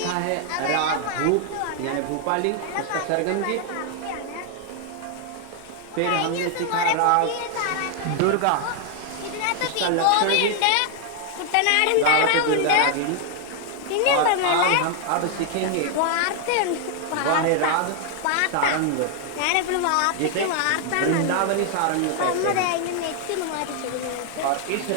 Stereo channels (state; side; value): different; both; correlation 0.00